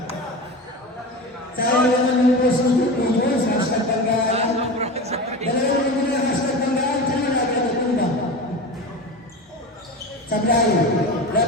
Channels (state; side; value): normal; both; correlation 0.28